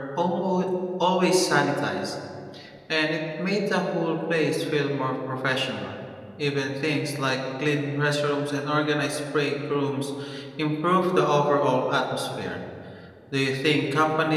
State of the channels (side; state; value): both; identical; correlation 1.00